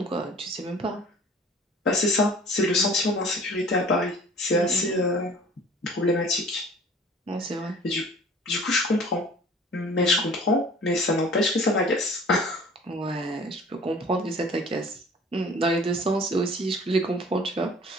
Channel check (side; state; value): both; normal; correlation 0.48